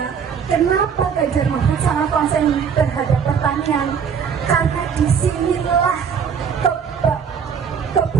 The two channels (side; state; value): left; quieter; 6.9 dB